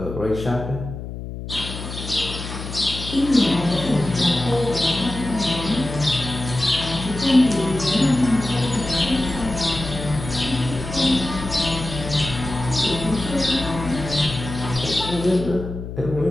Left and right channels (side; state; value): left; noise; hum, 8 dB below the sound